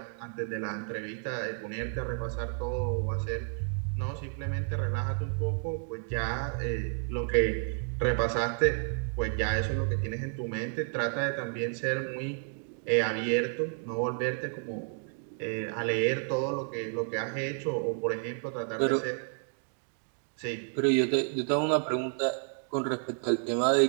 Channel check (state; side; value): silent; left; 57 dB below the other